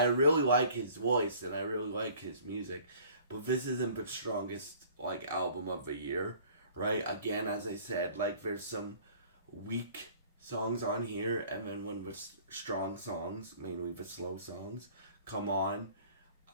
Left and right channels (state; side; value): inverted; both; correlation -0.51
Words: really like his voice and I really like his music, but this isn't the strongest like album of the year, right? Again, as I said, like there's some weak songs on here, and then when the strong songs, mainly the slow songs, come on.